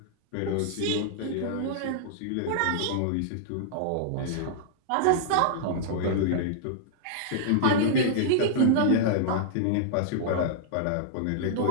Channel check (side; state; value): both; different; correlation -0.02